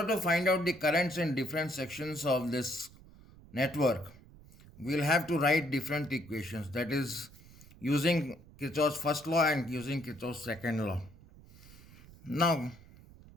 to find out the currents in different sections of this network, we will have to write different equations, that is using Kirchhoff's first law and using Kirchhoff's second law. Now,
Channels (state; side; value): noise; right; rumble, 21 dB below the sound